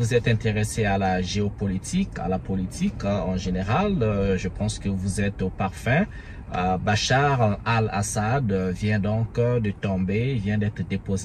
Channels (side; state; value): both; identical; correlation 1.00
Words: êtes intéressé à la géopolitique, à la politique en général, je pense que vous êtes au parfum. Bachar al-Assad vient donc de tomber, vient d'être